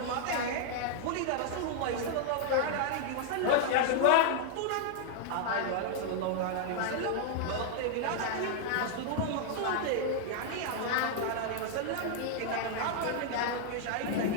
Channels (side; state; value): both; different; correlation 0.00